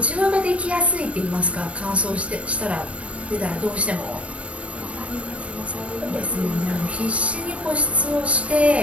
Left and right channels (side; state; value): left; late; 0.063 ms